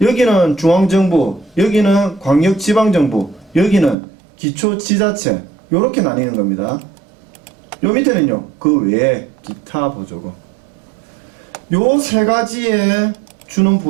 여기는 중앙정부, 여기는 광역지방정부, 여기는 기초지자체, 요렇게 나뉘는 겁니다. 요 밑에는요, 그 외에 기타 보조금. 요 세 가지에 주는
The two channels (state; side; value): drops out; left; at 4.0 s